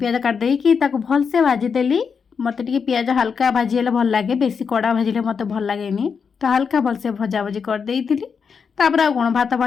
କାଟିଦେଇକି ତାକୁ ଭଲସେ ଭାଜିଦେଲି। ମୋତେ ଟିକେ ପିଆଜ ହାଲକା ଭାଜି ହେଲେ ଭଲ ଲାଗେ, ବେଶୀ କଡ଼ା ଭାଜିଲେ ମୋତେ ଭଲ ଲାଗେନି। ତ ହାଲକା ଭଲସେ ଭଜାଭଜି କରିଦେଇଥିଲି। ତାପରେ ଆଉ କ'ଣ ଭାତ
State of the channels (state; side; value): quieter; right; 6.1 dB